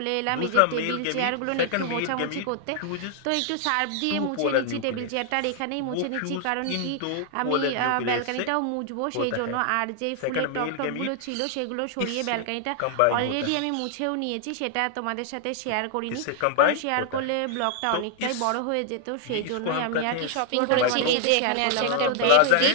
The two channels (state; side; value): different; both; correlation 0.00